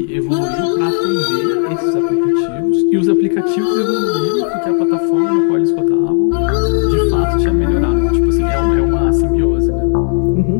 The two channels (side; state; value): right; silent; digital silence